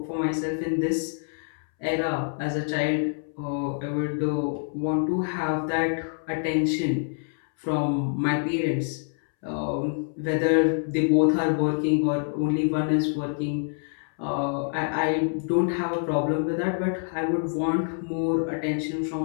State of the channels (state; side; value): silent; right; 61 dB below the other